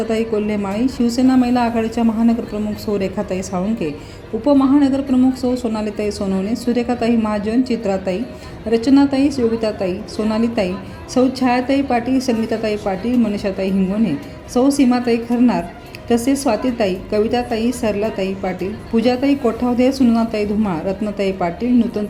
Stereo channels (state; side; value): identical; both; correlation 1.00